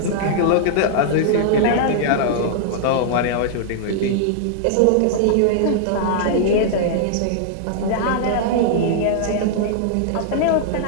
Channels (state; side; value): different; both; correlation -0.01